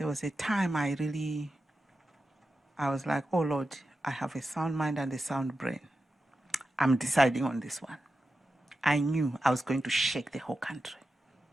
was a time I was like, oh Lord, I have a sound mind and a sound brain. I'm deciding on this one. I knew I was going to shake the whole country,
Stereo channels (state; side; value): normal; both; correlation 0.91